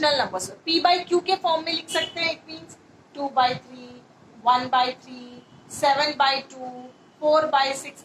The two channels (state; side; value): identical; both; correlation 1.00